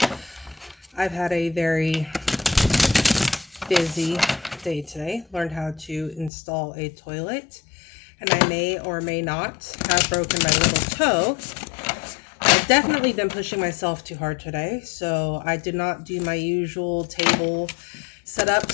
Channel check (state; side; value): drops out; right; at 6.3 s